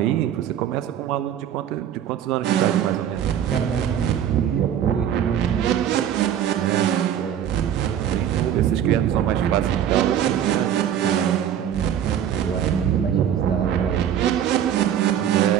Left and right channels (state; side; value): quieter; left; 9.8 dB